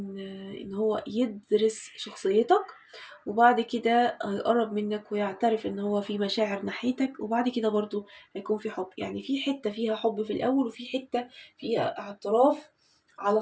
ان هو يدرس شخصيتك، وبعد كده هيقرب منك ويعترف ان هو في مشاعر ناحيتك، وبعد كده برضو هيكون في حب. يعني في حتة فيها حب في الاول، وفي حتة فيها اعتراف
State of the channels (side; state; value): both; identical; correlation 1.00